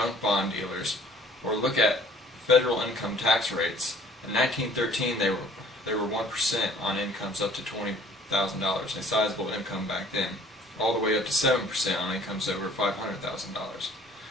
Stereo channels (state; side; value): normal; both; correlation 0.54